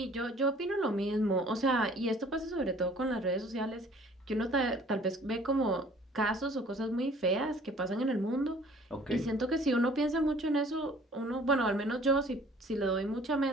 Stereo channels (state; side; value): normal; both; correlation 0.53